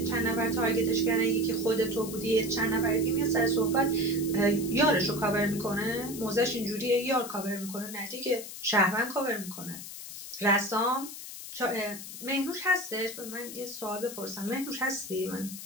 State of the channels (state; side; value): noise; left; hiss, 11 dB below the sound